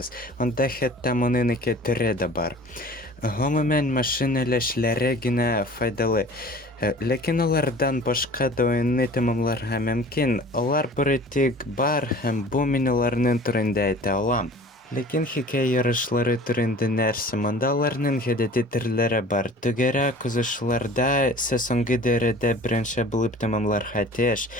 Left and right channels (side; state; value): both; normal; correlation 0.44